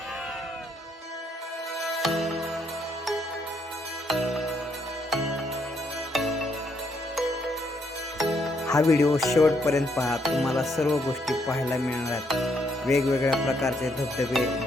हा व्हिडिओ शेवटपर्यंत पहा. तुम्हाला सर्व गोष्टी पाहायला मिळणार आहेत. वेगवेगळ्या प्रकारचे धबधबे,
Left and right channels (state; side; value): normal; both; correlation 0.74